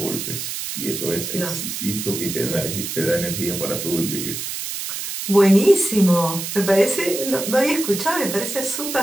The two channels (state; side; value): noise; right; hiss, 5 dB below the sound